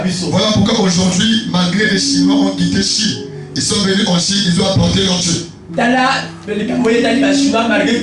Voilà pourquoi aujourd'hui, malgré les Chinois ont quitté Chine, ils sont venus en Chine, ils ont apporté leur Dieu.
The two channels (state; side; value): identical; both; correlation 1.00